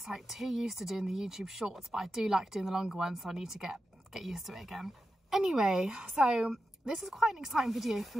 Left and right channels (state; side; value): normal; both; correlation 0.90